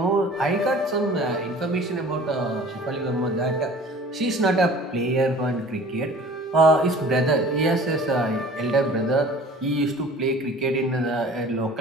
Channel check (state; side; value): normal; both; correlation 0.46